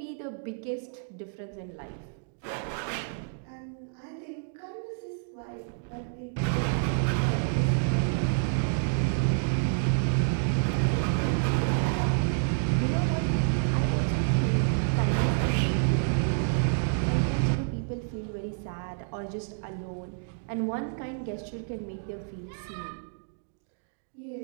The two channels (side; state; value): left; silent; digital silence